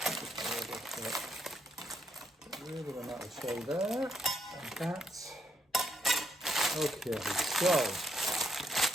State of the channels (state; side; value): normal; both; correlation 0.75